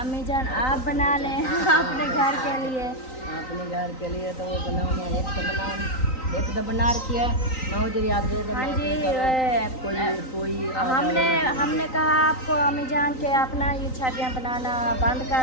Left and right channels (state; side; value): late; right; 3.9 ms